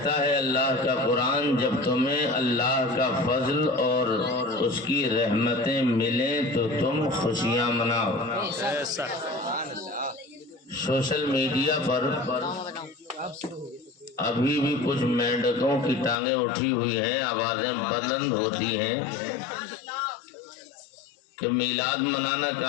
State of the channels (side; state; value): right; drops out; at 16.2 s